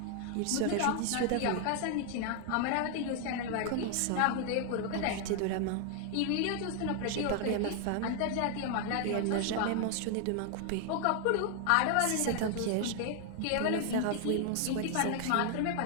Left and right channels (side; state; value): both; different; correlation 0.00